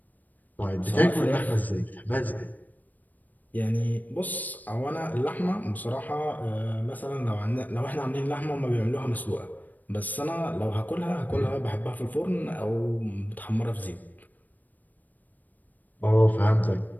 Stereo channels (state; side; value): late; right; 0.083 ms